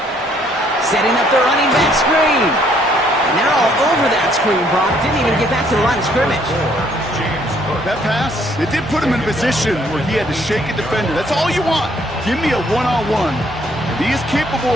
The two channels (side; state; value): both; normal; correlation 0.65